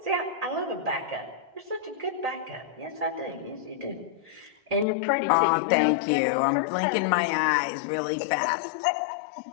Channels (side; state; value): right; drops out; at 4.9 s